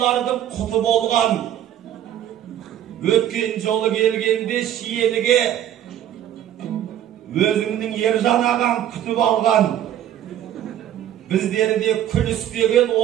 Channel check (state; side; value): quieter; left; 11.3 dB